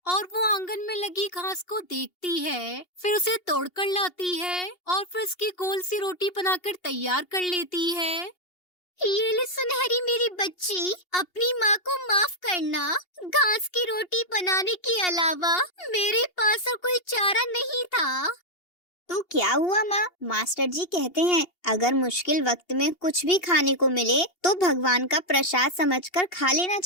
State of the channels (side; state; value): right; late; 2.8 ms